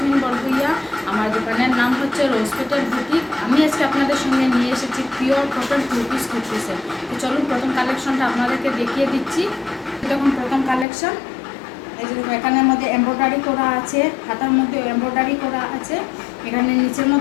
বরগুইয়া। আমার দোকানের নাম হচ্ছে রোজ পেটেল বুটিক। আমি আজকে আপনাদের সঙ্গে নিয়ে এসেছি পিওর কটন টু পিস কুর্তিসের। তো চলুন প্রথম কালেকশনটা আপনাদেরকে দেখিয়ে দিচ্ছি। দেখুন প্রথম কালেকশন, এই যে দেখুন এখানের মধ্যে এমব্রয়ডারি করা আছে, হাতার মধ্যে এমব্রয়ডারি করা আছে, এখানে নিচের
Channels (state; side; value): drops out; right; at 10.9 s